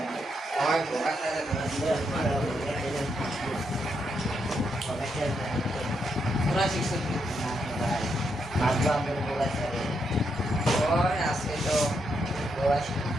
পড়া শিখছি মারবো আমরা বগাচারে আজকে তো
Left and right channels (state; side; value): normal; both; correlation 0.80